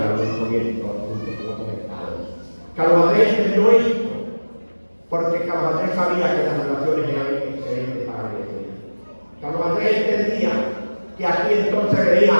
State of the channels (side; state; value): both; inverted; correlation -1.00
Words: la Unión Soviética junto con otros estados. Carlos Andrés entendió esto, porque Carlos Andrés sabía que las relaciones eran excelentes para Venezuela. Carlos Andrés entendía que aquí entonces venía